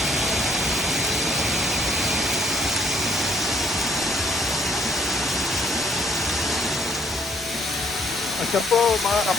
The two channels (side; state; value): both; normal; correlation 0.64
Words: Siya po mga